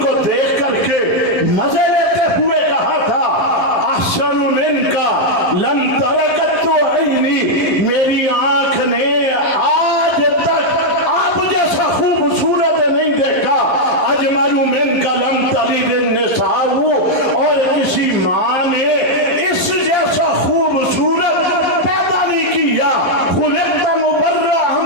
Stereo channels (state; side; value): late; right; 11 ms